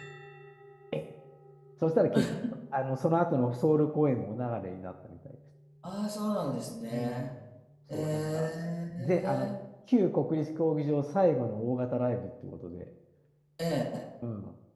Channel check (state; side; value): identical; both; correlation 1.00